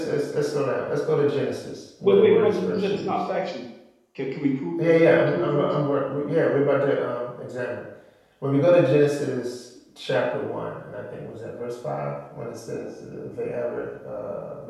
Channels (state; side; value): identical; both; correlation 1.00